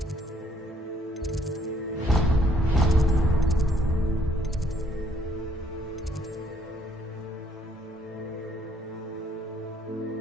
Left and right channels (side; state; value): both; normal; correlation 0.67